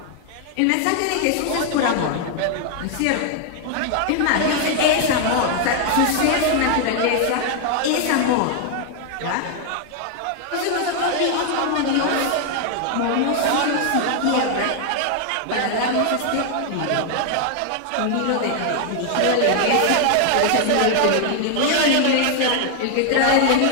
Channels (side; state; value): both; different; correlation 0.00